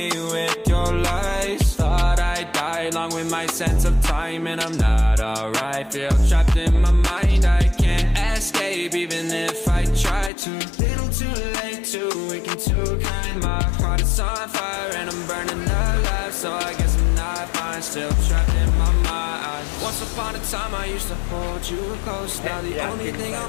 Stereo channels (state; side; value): drops out; right; at 10.3 s